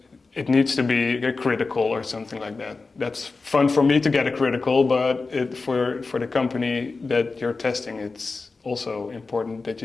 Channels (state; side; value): quieter; right; 4.0 dB